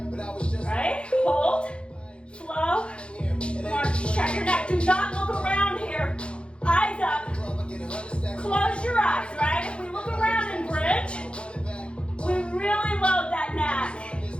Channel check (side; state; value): right; late; 0.058 ms